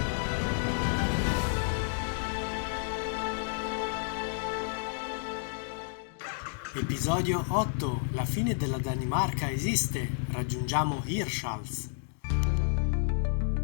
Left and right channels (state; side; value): silent; right; digital silence